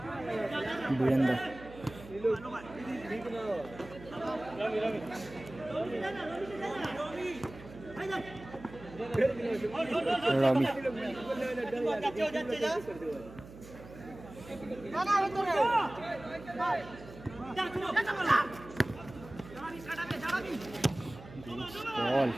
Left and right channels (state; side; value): noise; right; hum, 17 dB below the sound